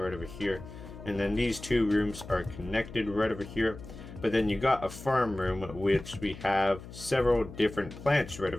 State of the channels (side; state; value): left; noise; hum, 14 dB below the sound